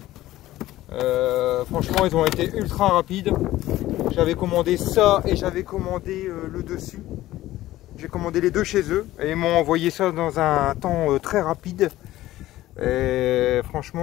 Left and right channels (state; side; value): quieter; right; 15.5 dB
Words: Franchement, ils ont été ultra rapides. J'avais commandé ça et j'avais commandé le dessus. J'ai commandé les deux chez eux et ils m'ont envoyé ça dans un temps très rapide. Et